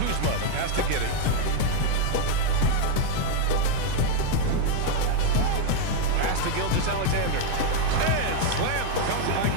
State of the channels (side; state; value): both; different; correlation 0.00